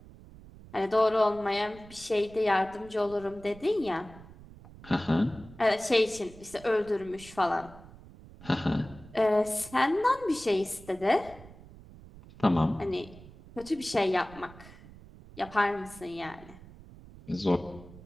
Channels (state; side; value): noise; right; rumble, 19 dB below the sound